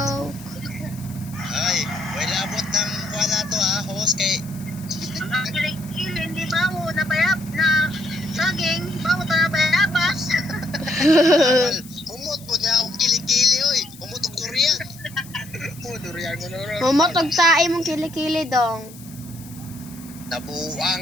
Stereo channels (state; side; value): noise; left; hiss, 19 dB below the sound